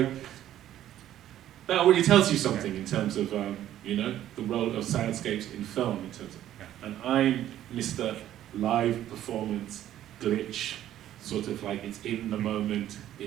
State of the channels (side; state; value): left; quieter; 12.3 dB